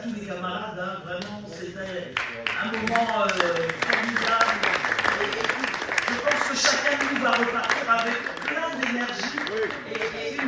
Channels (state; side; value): identical; both; correlation 1.00